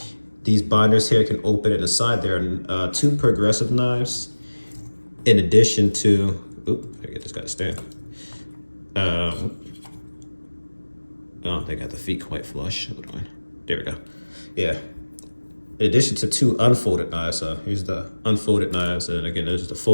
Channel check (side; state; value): both; inverted; correlation -1.00